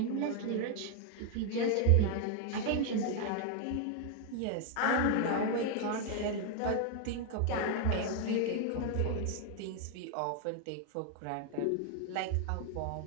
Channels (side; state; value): both; different; correlation 0.00